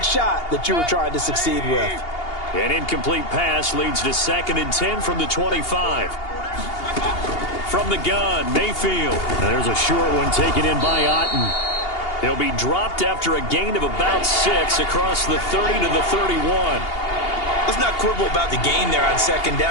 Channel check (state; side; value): late; right; 2.8 ms